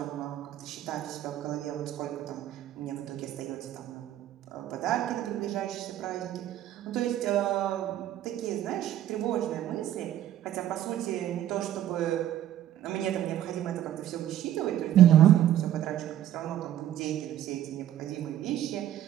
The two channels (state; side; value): quieter; left; 12.0 dB